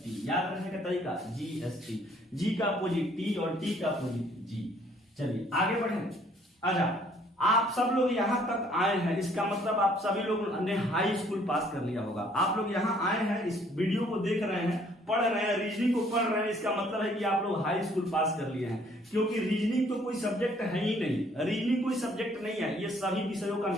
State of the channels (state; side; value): normal; both; correlation 0.62